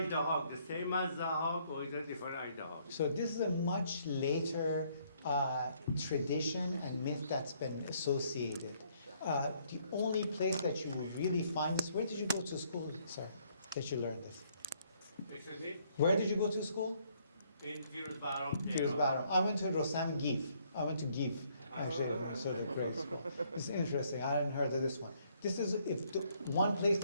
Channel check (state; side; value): inverted; both; correlation -0.68